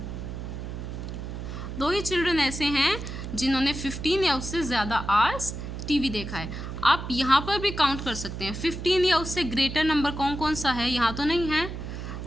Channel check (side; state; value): right; noise; hum, 7 dB below the sound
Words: 2 ही चिल्ड्रन ऐसे हैं जिन्होंने 15 या उससे ज़्यादा आवर्स टीवी देखा है. आप यहाँ पर भी काउंट कर सकते हैं. 15 या उससे ग्रेटर नंबर कौन कौन सा है, यहाँ तो नहीं है.